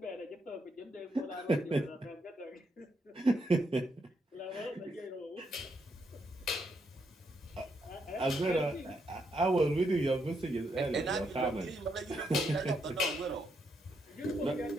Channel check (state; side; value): normal; both; correlation 0.78